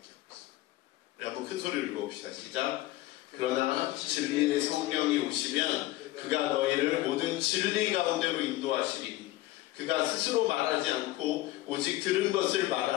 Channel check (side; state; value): right; quieter; 17.0 dB